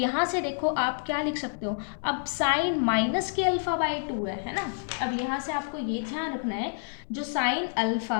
से देखो आप क्या लिख सकते हो, अब साइन माइनस के अल्फा बाय 2 है ना। अब यहाँ से आपको ये ध्यान रखना है जो साइन अल्फा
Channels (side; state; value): right; silent; 59 dB below the other